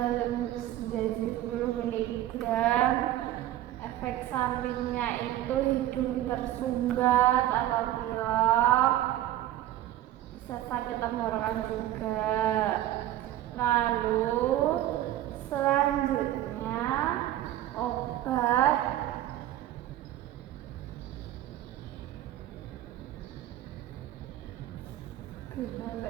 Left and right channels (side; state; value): left; quieter; 13.7 dB